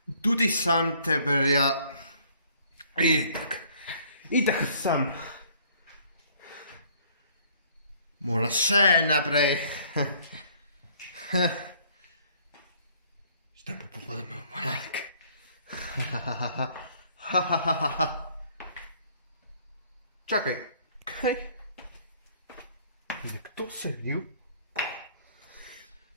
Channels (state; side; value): inverted; both; correlation -0.59